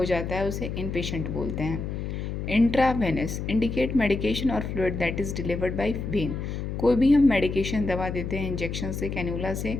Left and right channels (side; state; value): left; noise; hum, 4 dB below the sound